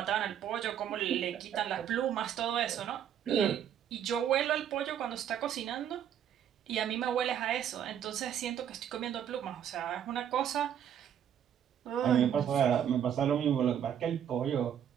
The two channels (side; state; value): left; quieter; 9.5 dB